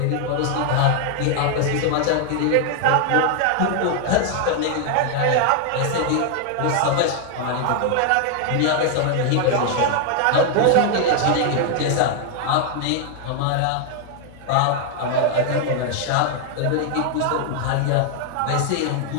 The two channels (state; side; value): different; both; correlation 0.00